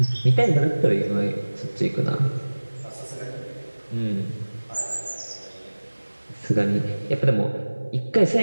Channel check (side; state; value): both; inverted; correlation -1.00